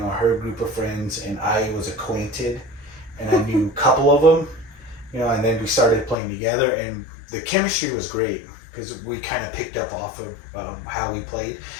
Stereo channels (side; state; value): right; drops out; at 6.2 s